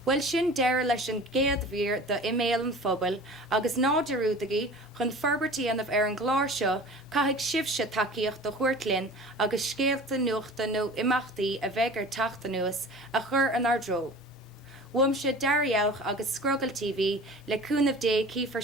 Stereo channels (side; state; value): both; normal; correlation 0.40